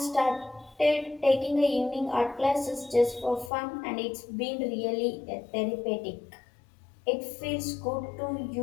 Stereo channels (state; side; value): drops out; right; at 3.5 s